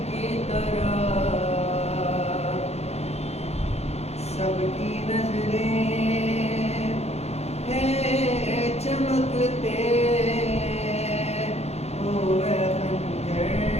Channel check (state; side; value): late; right; 0.31 ms